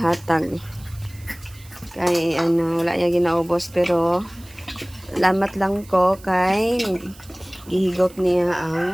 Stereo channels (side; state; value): right; noise; hiss, 23 dB below the sound